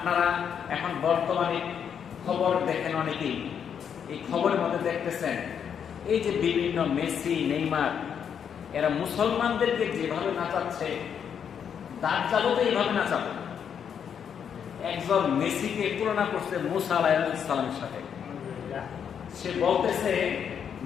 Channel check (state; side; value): quieter; right; 7.8 dB